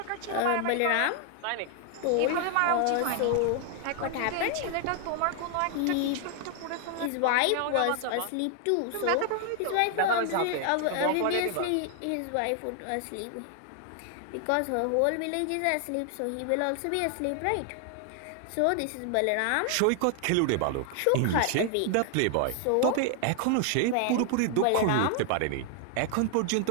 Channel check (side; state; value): both; different; correlation 0.00